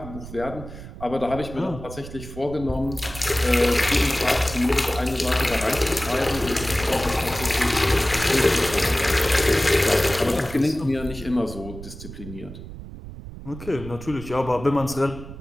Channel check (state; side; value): noise; right; rumble, 12 dB below the sound